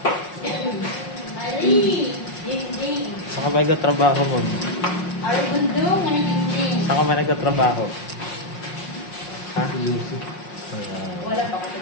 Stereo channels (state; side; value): late; right; 5.6 ms